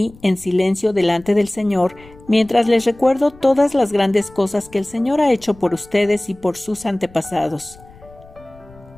en silencio delante del Señor, mientras les recuerdo todas las grandes cosas que el Señor ha hecho por ustedes y por sus antepasados.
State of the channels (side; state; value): left; noise; rumble, 24 dB below the sound